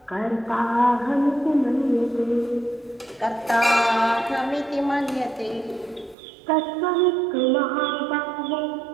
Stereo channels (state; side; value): drops out; left; at 6.2 s